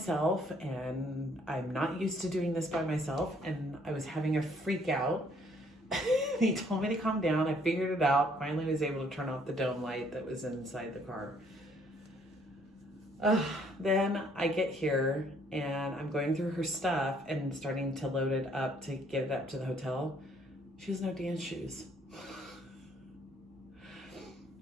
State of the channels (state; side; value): normal; both; correlation 0.64